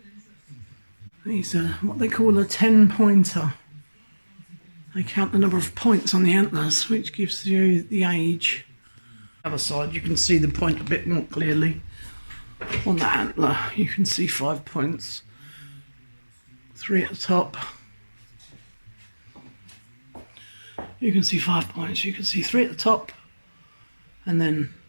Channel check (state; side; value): inverted; both; correlation -1.00